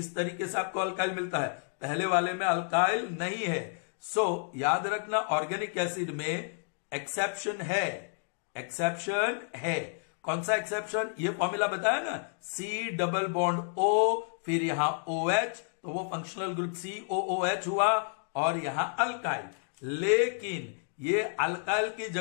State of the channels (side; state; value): right; silent; digital silence